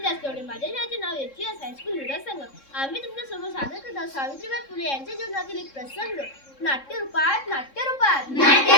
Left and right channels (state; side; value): late; right; 3.7 ms